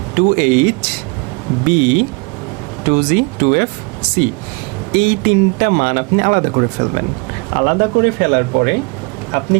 2h b 2g 2f c এই তিনটা মান আপনি আলাদা করে ফেলবেন। আলাদা করে ফেলার পরে আপনি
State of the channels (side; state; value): left; quieter; 30.2 dB